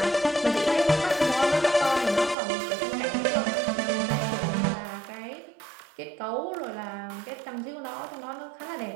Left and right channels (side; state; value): left; drops out; at 2.4 s